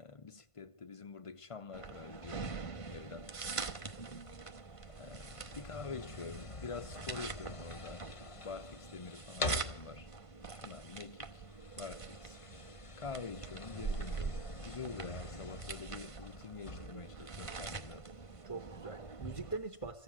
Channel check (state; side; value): late; right; 1.5 ms